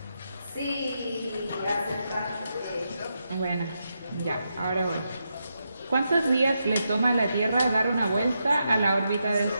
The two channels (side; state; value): both; inverted; correlation -0.84